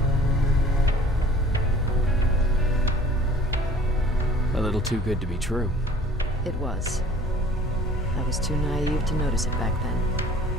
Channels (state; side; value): normal; both; correlation 0.50